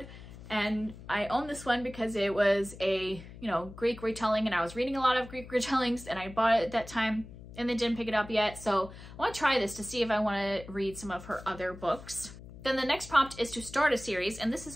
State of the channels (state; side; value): noise; left; hum, 16 dB below the sound